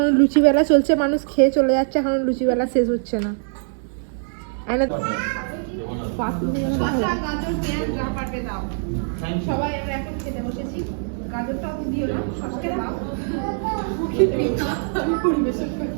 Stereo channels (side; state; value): left; silent; digital silence